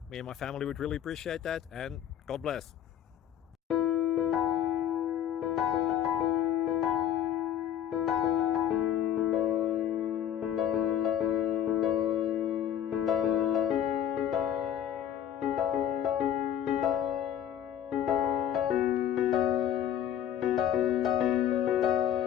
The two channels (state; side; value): quieter; right; 10.2 dB